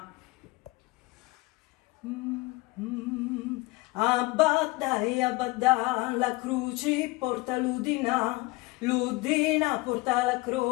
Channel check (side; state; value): right; quieter; 22.3 dB